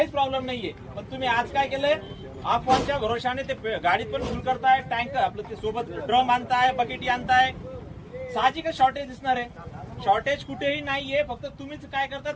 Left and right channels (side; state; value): both; identical; correlation 1.00